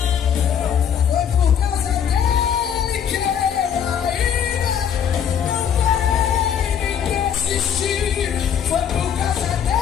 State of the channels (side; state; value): right; quieter; 8.3 dB